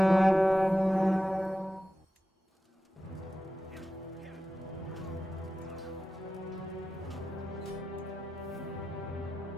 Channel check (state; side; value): normal; both; correlation 0.93